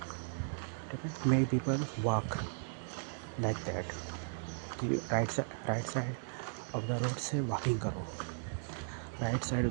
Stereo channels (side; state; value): left; silent; digital silence